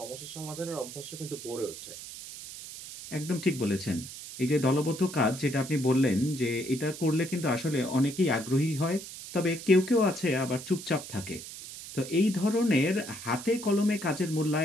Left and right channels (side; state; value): right; noise; hiss, 12 dB below the sound